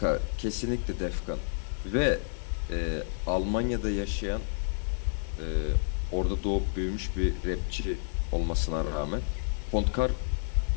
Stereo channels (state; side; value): silent; right; digital silence